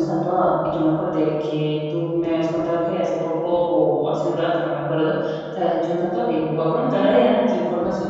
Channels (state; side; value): identical; both; correlation 1.00